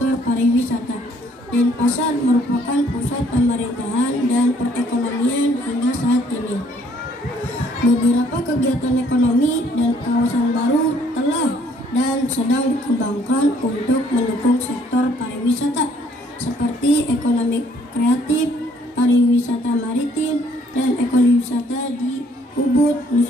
pariwisata. Denpasar merupakan pusat pemerintahan dan perekonomian hingga saat ini. Beberapa kegiatan ekonomi dan kawasan baru telah dan sedang dikembangkan untuk mendukung sektor pariwisata seperti ekonomi kreatif, pariwisata maritim, dan ekowisata di Ubud,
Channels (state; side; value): normal; both; correlation 0.63